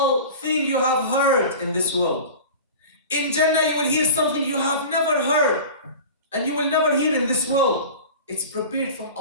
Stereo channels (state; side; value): inverted; both; correlation -0.35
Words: thing you have heard in this world? In Jannah, you will hear something you have never heard and you will never hear in this world. It's prepared from